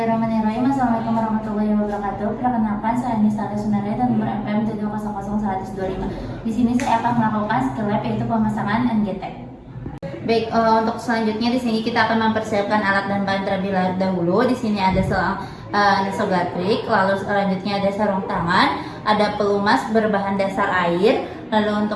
Assalamualaikum warahmatullahi wabarakatuh. Perkenalkan, saya Nisa Sunare dan nomor MPM 7000125. Di sini saya akan melakukan skill lab yaitu pemasangan NGT. Baik, untuk selanjutnya di sini kita akan mempersiapkan alat dan bahan terlebih dahulu. Di sini ada selang nasogatrik, lalu selanjutnya ada sarung tangan, ada pelumas berbahan dasar air. Lalu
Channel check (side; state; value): both; identical; correlation 1.00